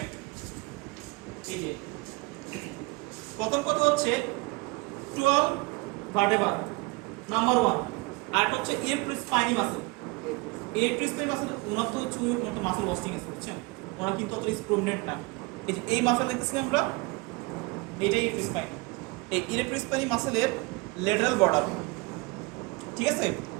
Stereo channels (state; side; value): quieter; left; 25.8 dB